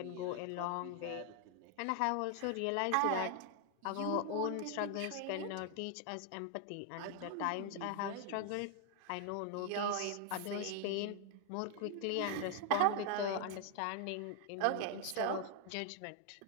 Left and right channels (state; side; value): different; both; correlation 0.00